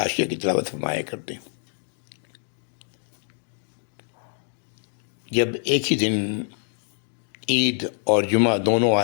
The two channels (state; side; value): silent; right; 61 dB below the other